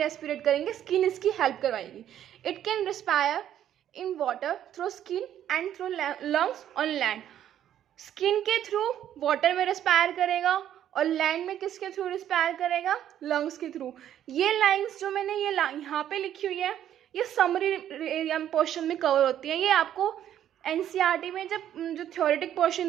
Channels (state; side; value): quieter; left; 10.9 dB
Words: करेंगे, स्किन इसकी हेल्प करवाएगी। It can respire in water through skin and through lungs on land. Skin के थ्रू वाटर में रेस्पायर करेगा और लैंड में किसके थ्रू रेस्पायर करेगा? लंग्स के थ्रू। ये लाइंस जो मैंने ये यहाँ पे लिखी हुई है, ये समरी एरिया पोर्शन में कवर होती है। ये आपको एनसीईआरटी में जब जो थ्योरेटिक पोर्शन